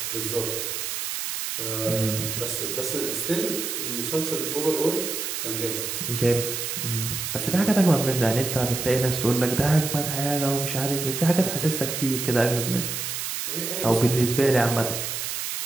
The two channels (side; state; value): right; noise; hiss, 3 dB below the sound